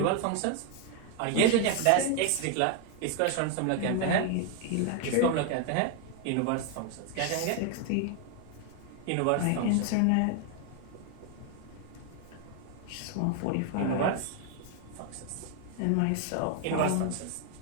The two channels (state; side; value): different; both; correlation 0.01